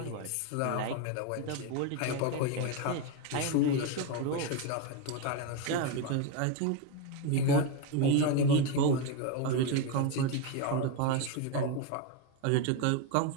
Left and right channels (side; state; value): both; different; correlation 0.03